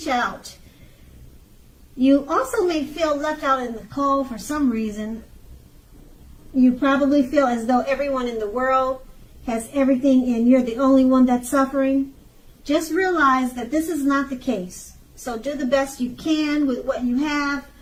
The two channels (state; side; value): identical; both; correlation 1.00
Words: out. You also may feel left out in the cold for some reason. You probably feel as though everyone in the world has everything and you're the only one that's suffering. Just realize that this is not the case. So do the best you can with what you have.